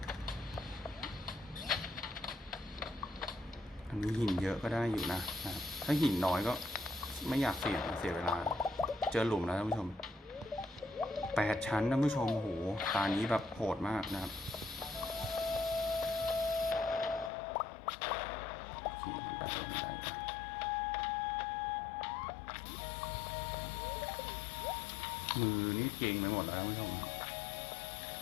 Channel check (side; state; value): right; drops out; at 17.3 s